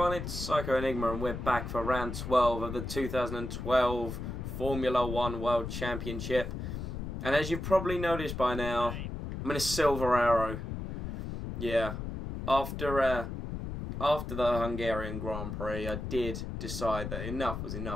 it's Psycho Enigma and we're back for round 12 of the 2012 Formula 1 World Championship. And as you've probably noticed by now, I'm in a silver arrow. Yeah, after the Hungarian Grand Prix, I did decide that enough was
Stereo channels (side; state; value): left; noise; rumble, 6 dB below the sound